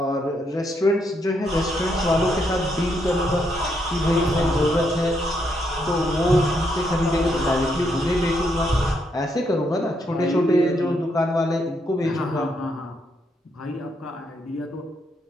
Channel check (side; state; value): both; normal; correlation 0.77